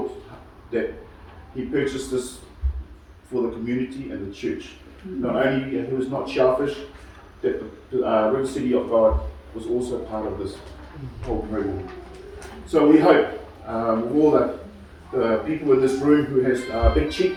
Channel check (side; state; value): both; identical; correlation 1.00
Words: that He purchased this for the community and the church. Not only He was not selfish, that the River City of God was also part of this whole program. So we hope with all the people in this room who has big